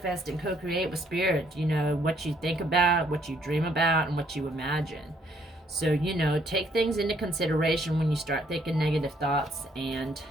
and co-create with Spirit. What you think about, what you dream about, and what you imagine. So, take things into consideration when you start thinking negative thoughts and,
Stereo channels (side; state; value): both; normal; correlation 0.67